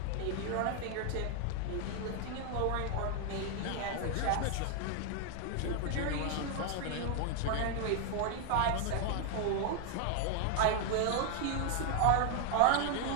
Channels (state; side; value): different; both; correlation 0.00